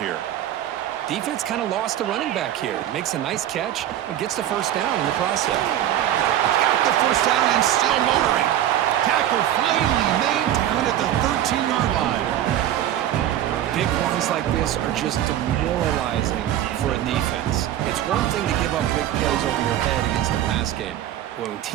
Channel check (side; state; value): left; quieter; 11.9 dB